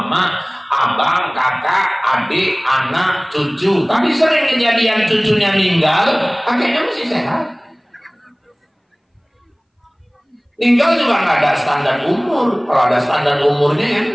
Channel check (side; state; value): both; identical; correlation 1.00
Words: abang, kakak, adik, anak, cucu. Tapi sering kejadian cucunya meninggal, kakeknya masih sehat. Meninggal juga nggak ada standar umur. Kalau ada standar umurnya